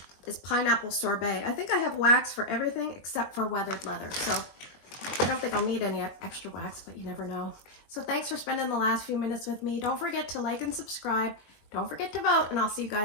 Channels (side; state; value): right; late; 21 ms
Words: Is pineapple sorbet. I think I have wax for everything except for weathered leather. So I don't think I'll need any extra wax, but you never know. So thanks for spending the last few minutes with me. Don't forget to like and subscribe. Don't forget to vote, and I'll see you